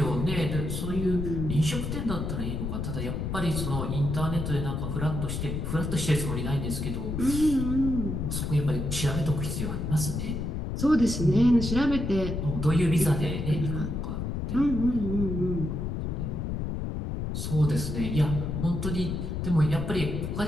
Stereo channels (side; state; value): left; noise; rumble, 3 dB below the sound